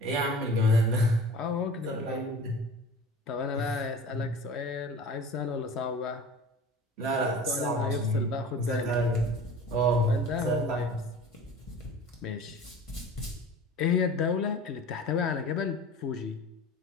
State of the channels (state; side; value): normal; both; correlation 0.40